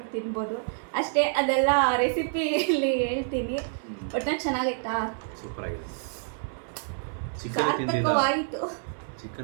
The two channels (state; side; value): silent; left; 55 dB below the other